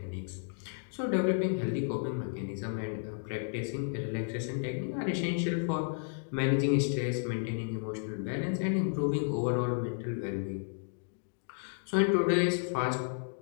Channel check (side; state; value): right; silent; digital silence